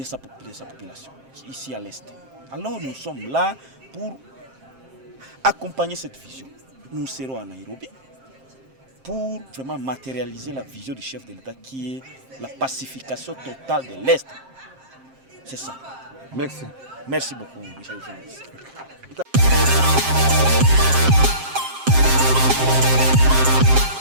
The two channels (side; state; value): left; late; 7.6 ms